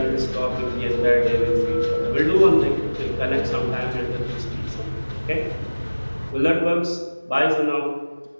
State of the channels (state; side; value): inverted; both; correlation -1.00